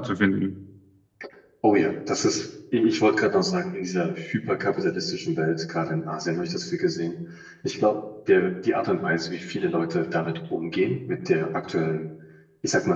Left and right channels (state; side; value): identical; both; correlation 1.00